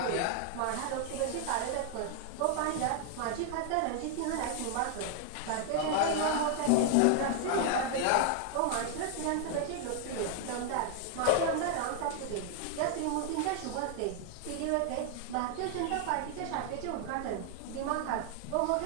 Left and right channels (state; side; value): different; both; correlation 0.00